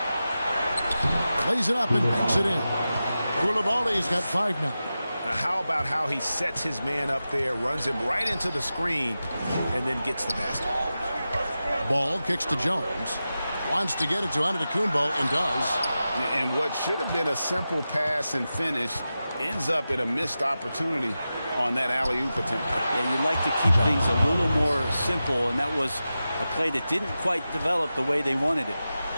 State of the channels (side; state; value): both; inverted; correlation -0.93